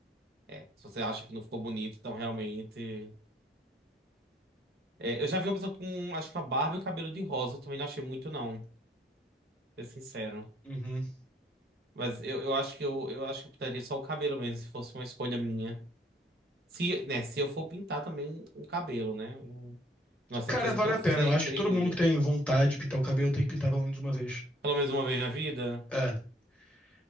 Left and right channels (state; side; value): normal; both; correlation 0.64